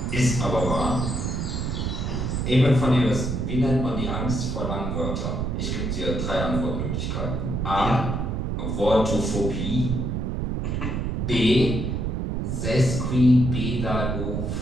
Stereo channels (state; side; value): noise; right; rumble, 1 dB below the sound